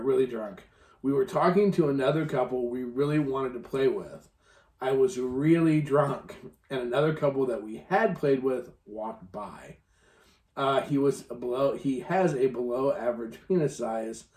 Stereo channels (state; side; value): identical; both; correlation 1.00